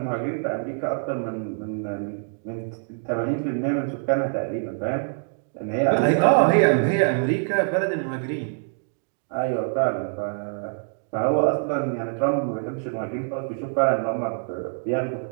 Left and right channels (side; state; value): left; silent; digital silence